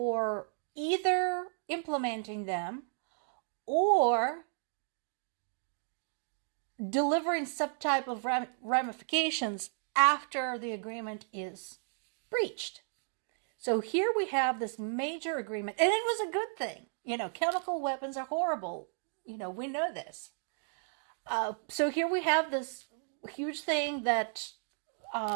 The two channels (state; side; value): silent; left; digital silence